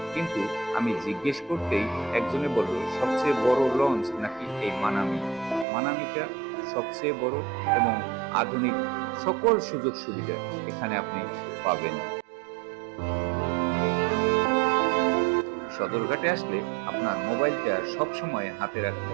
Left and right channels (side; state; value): left; drops out; at 5.7 s